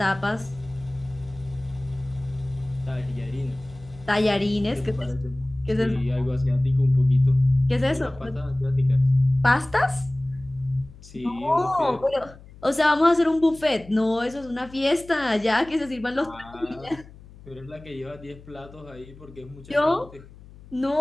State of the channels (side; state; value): left; noise; hum, 21 dB below the sound